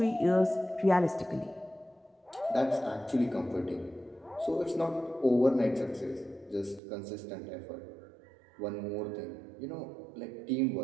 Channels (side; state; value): left; drops out; at 6.8 s